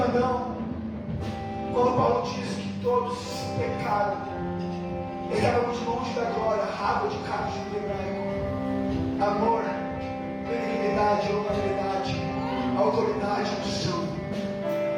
quando Paulo diz que todos pecaram, estávamos longe da glória, rabo de cabo de hebraico, amor, benignidade, honorabilidade, autoridade, unção.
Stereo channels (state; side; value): identical; both; correlation 1.00